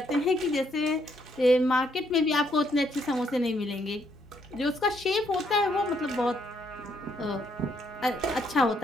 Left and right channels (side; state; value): both; normal; correlation 0.72